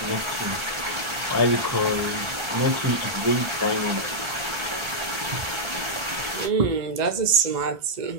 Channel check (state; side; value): late; left; 1.4 ms